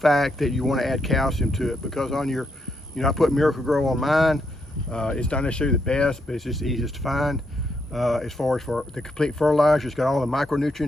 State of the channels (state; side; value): normal; both; correlation 0.78